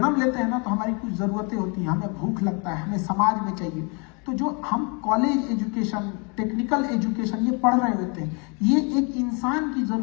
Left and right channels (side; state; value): right; quieter; 33.5 dB